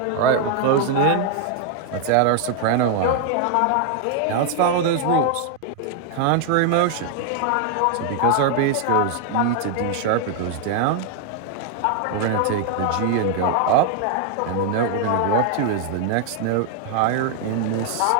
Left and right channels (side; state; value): both; different; correlation 0.00